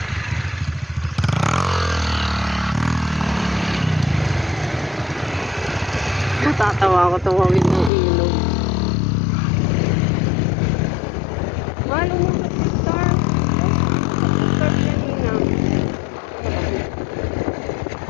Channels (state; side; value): drops out; right; at 7.9 s